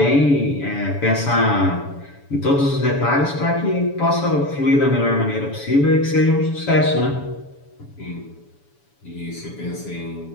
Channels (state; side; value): late; right; 7.0 ms